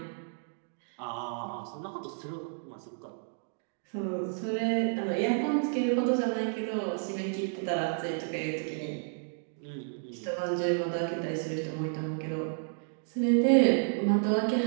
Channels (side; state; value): left; silent; digital silence